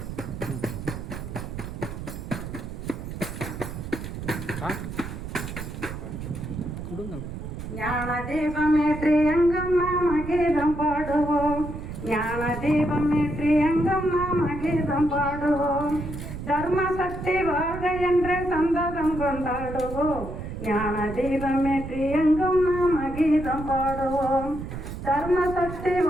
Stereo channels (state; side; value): noise; right; rumble, 8 dB below the sound